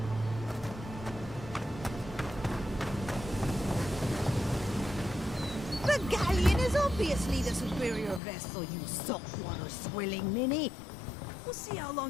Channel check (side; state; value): right; drops out; at 8.2 s